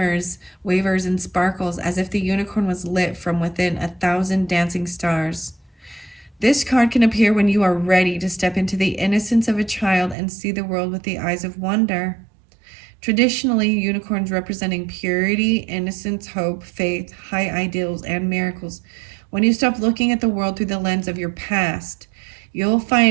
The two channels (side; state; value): left; drops out; at 10.2 s